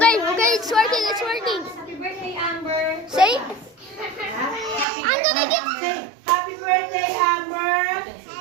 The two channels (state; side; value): drops out; left; at 4.9 s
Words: it's working, Happy birthday, Amber. Say, I'm gonna get... Say, happy birthday, Amber.